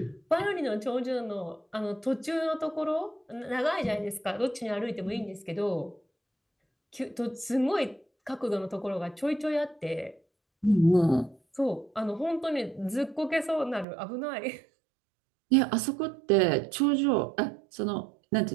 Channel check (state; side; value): drops out; left; at 13.9 s